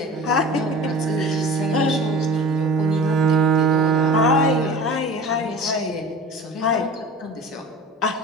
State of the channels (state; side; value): normal; both; correlation 0.37